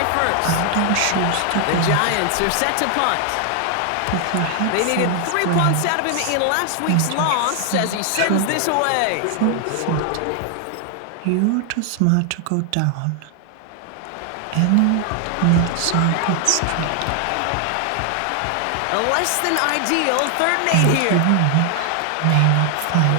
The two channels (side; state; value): both; different; correlation 0.00